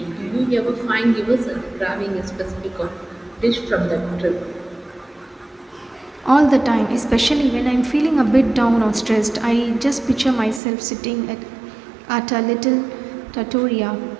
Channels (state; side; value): drops out; left; at 10.6 s